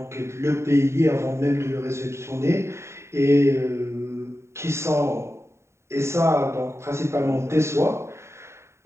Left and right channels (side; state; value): left; late; 0.13 ms